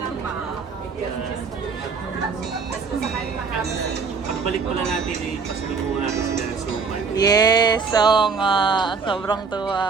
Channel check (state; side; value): quieter; left; 5.0 dB